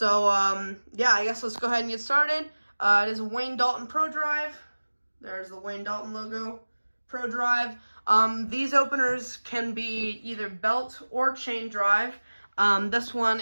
yeah, I guess let's go ahead and get started. It is a Wayne Dalton Pro Drive. There's the Wayne Dalton logo, Pro Drive. These openers can be either belt or chain drive. This one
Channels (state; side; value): inverted; both; correlation -1.00